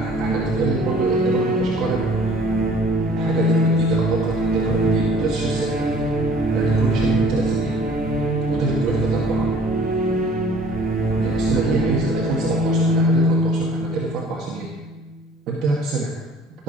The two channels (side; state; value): both; normal; correlation 0.52